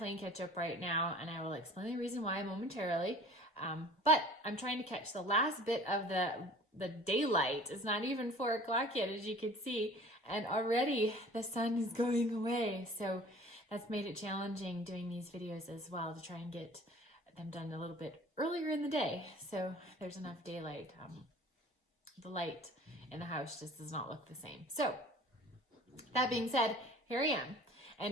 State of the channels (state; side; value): normal; both; correlation 0.46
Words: catch up right now, and I will explain the reason why momentarily. But I'm trying to catch the last bit of the daylight. It's not even 4 o'clock yet, as you can see, and already the sun is going away. So that's made it challenging doing these videos as well, to try and get them done a little bit earlier in the day, so there's enough daylight. The light in the house just does not look the same. So that being said, here I am.